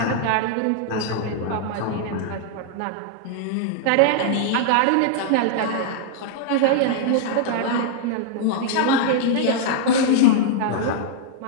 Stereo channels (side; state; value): both; different; correlation -0.01